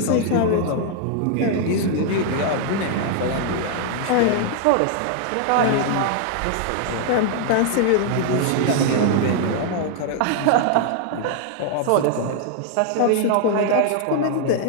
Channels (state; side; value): different; both; correlation 0.00